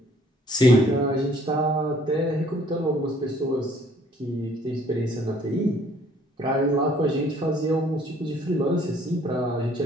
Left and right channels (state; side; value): normal; both; correlation 0.60